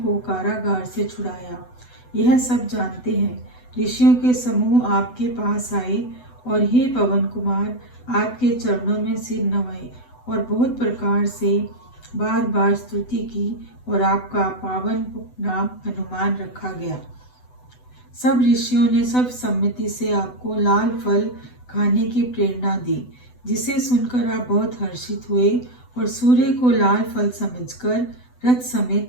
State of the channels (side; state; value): right; late; 8.0 ms